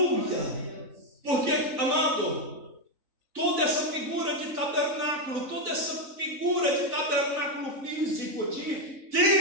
Porque, amado, toda essa figura de tabernáculo, toda essa figura de tabernáculo físico, de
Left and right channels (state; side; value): late; left; 3.9 ms